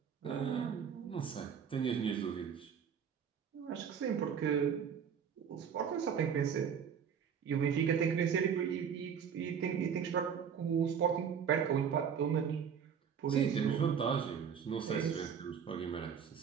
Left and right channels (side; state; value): left; quieter; 7.4 dB